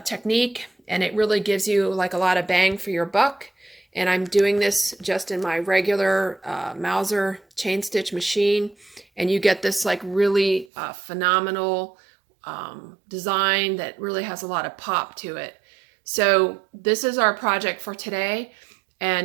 technique, and it really gives you like a lot of bang for your buck. And I'm doing this just in my regular Mauser chain stitch machine, and you get this like really phenomenal design that really has a lot of pop to it. So this is our project for today,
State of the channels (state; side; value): drops out; left; at 10.7 s